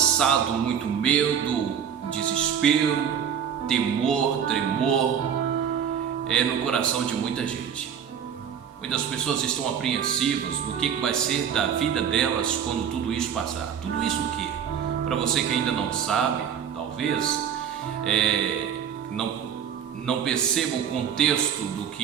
muito medo, desespero, temor, tremor no coração de muita gente. Muitas pessoas estão apreensivas do que vai ser da vida delas quando tudo isso passar. Tudo isso o quê? Para você que ainda não sabe, talvez não perceba o contexto do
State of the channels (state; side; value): quieter; left; 8.2 dB